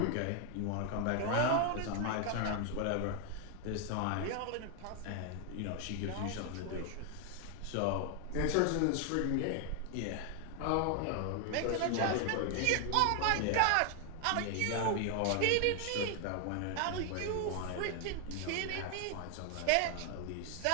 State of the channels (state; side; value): different; both; correlation 0.00